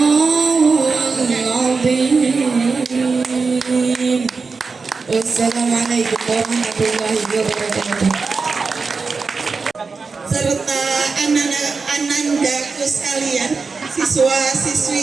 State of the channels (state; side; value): quieter; left; 4.6 dB